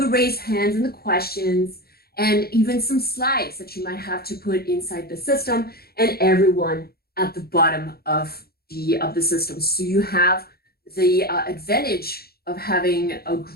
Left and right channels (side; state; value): right; late; 0.45 ms